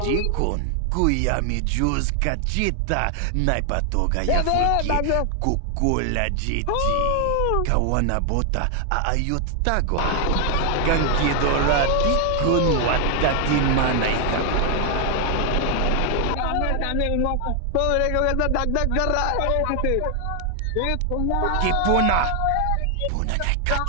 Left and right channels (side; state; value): both; different; correlation 0.00